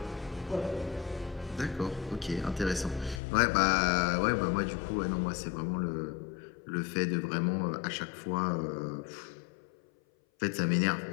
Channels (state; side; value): drops out; right; at 3.2 s